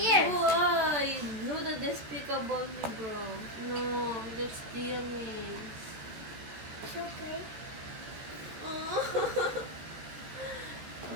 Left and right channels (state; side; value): late; left; 14 ms